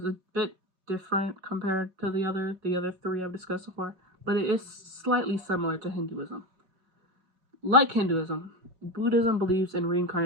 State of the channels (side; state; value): left; late; 5.4 ms